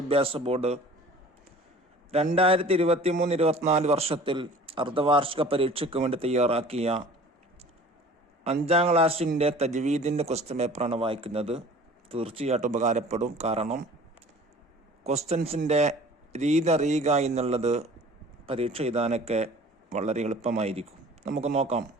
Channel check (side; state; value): both; normal; correlation 0.46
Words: ബോർഡ് 2023-24 വർഷത്തിൽ അർദ്ധവാർഷിക പരീക്ഷയ്ക്ക് വേണ്ടി തയ്യാറാക്കിയ 5ാം ക്ലാസ്സിൻ്റെ തജ്വീദിൻ്റെ ക്വസ്റ്റ്യൻ പേപ്പറാണ് വായിക്കുന്നത്. തീർച്ചയായിട്ടും ഉപകാരപ്പെടും. കാരണം ക്വസ്റ്റ്യൻസിൻ്റെ രീതി അറിയുക എന്നുള്ളത് പരീക്ഷ എഴുതാനൊക്കെ വളരെ എളുപ്പമായിരിക്കും. നമുക്ക് നോക്കാം.